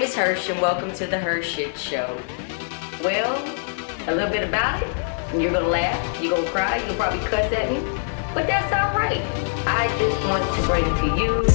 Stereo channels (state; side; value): silent; right; 55 dB below the other